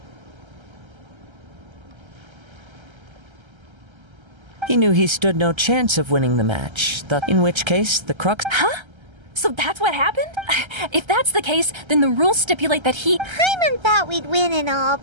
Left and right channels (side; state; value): left; late; 1.3 ms